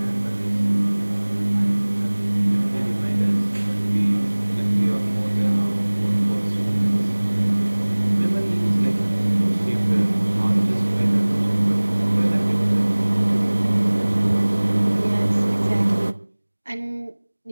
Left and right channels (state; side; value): inverted; both; correlation -1.00